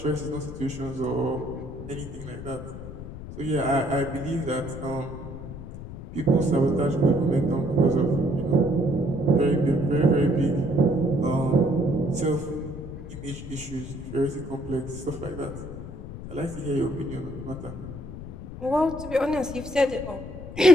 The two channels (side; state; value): left; noise; rumble, 11 dB below the sound